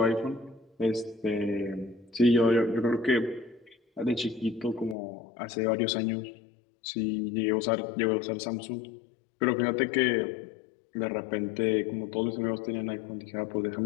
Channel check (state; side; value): drops out; right; at 5.0 s